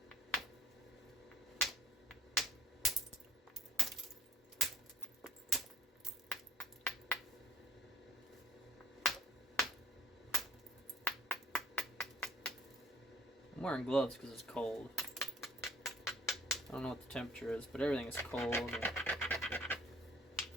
I'm wearing gloves because it's cold. I don't know what the temperature is, but everything is cold. And it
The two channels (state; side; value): normal; both; correlation 0.55